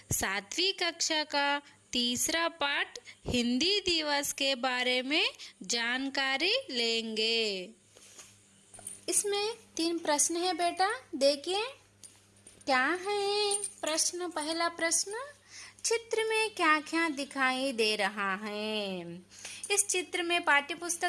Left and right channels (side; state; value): both; identical; correlation 1.00